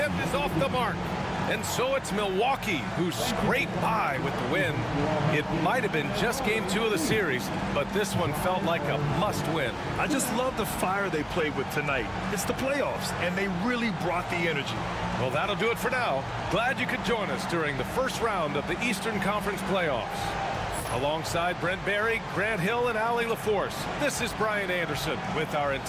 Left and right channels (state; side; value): identical; both; correlation 1.00